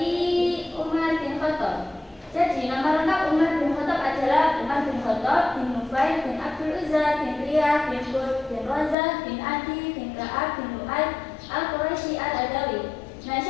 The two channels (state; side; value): drops out; right; at 9.0 s